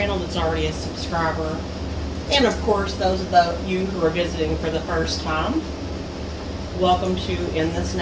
that's already a subscriber, and of course those of you who are visiting for the first time. Welcome to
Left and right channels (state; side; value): identical; both; correlation 1.00